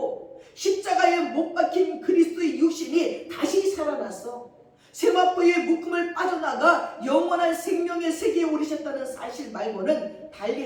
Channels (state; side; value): identical; both; correlation 1.00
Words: 십자가에 못 박힌 그리스도의 육신이 다시 살아났어 세마포의 묶음을 빠져나가 영원한 생명의 세계에 오르셨다는 사실 말고는